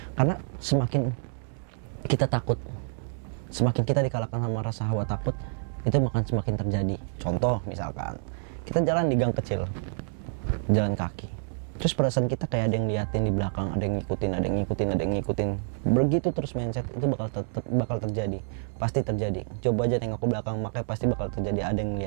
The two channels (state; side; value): silent; left; digital silence